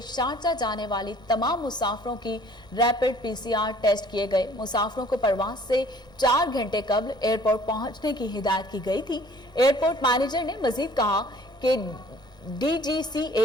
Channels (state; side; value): late; right; 1.8 ms